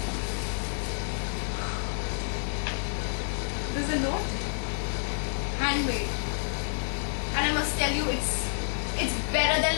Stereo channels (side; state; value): right; silent; 57 dB below the other